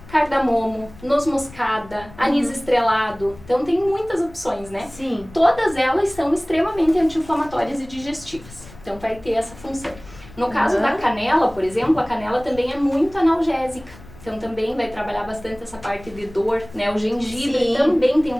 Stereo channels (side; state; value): left; noise; rumble, 20 dB below the sound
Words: cardamomo, noz moscada, anis estrelado. Então, tem muitas opções, né? Sim. Todas elas são extremamente anti-inflamatórias e digestivas. Então, vai ter essa função. No caso da canela, por exemplo, a canela também é muito analgésica. Então também vai trabalhar bastante essa parte de dor, né? O gengibre também tem um